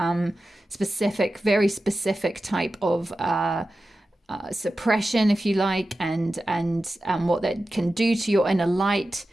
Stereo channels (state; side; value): normal; both; correlation 0.93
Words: very specific type of suppression, if you like, and what that can do to your inner light.